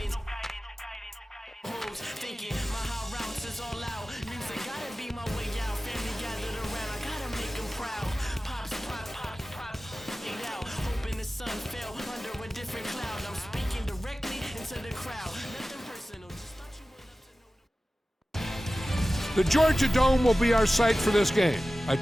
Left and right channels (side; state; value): both; normal; correlation 0.96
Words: Thinking my high routes is all out. Music gotta be my way out. Family gathered around, I gotta make them proud. Pops, get out. Hoping the sun fell under a different cloud. I'm speaking directly into the crowd. Nothing personal, just thought you would love to know. The Georgia Dome will be our site for this game. I